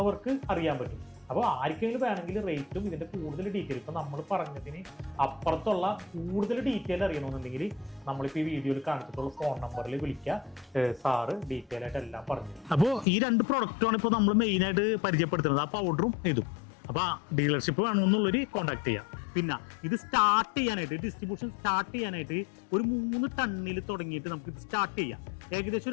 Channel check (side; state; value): right; drops out; at 13.1 s